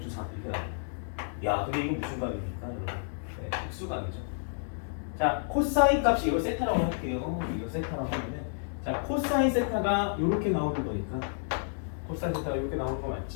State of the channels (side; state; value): right; silent; digital silence